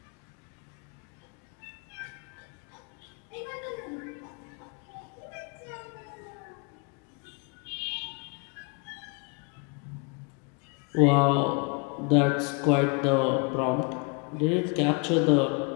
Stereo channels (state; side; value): quieter; right; 33.6 dB